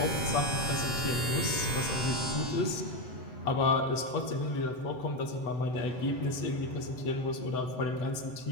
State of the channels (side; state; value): right; late; 7.9 ms